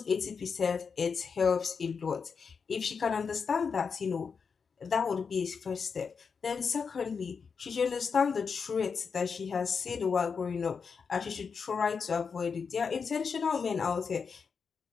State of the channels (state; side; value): quieter; right; 5.7 dB